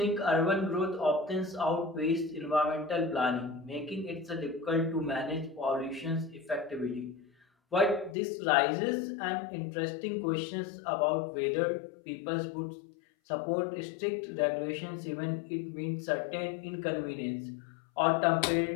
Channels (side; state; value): right; drops out; at 8.2 s